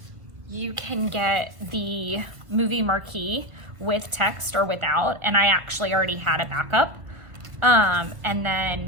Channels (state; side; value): late; left; 1.5 ms